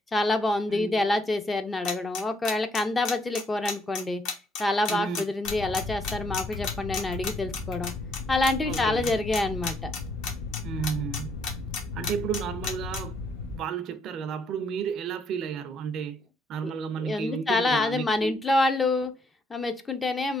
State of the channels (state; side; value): normal; both; correlation 0.70